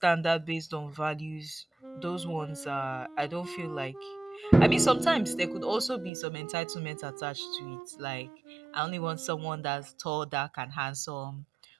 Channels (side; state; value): left; drops out; at 6.1 s